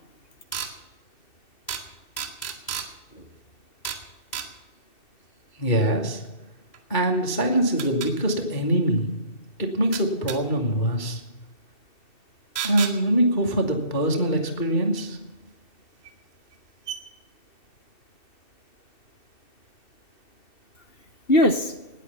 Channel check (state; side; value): late; right; 2.7 ms